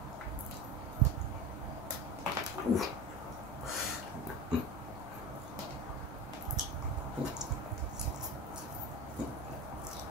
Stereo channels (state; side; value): normal; both; correlation 0.28